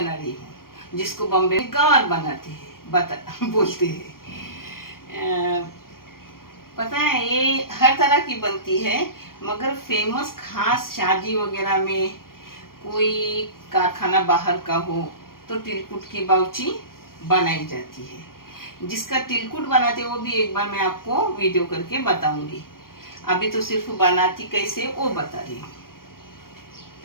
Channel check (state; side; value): late; right; 0.91 ms